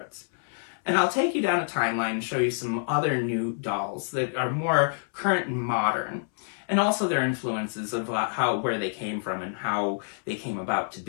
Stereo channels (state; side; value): silent; right; 60 dB below the other